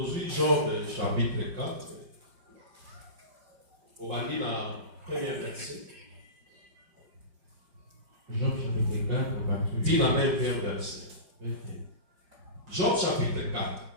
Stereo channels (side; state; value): left; late; 5.0 ms